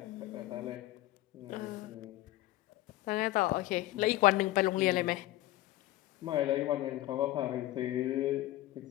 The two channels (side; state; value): right; quieter; 16.3 dB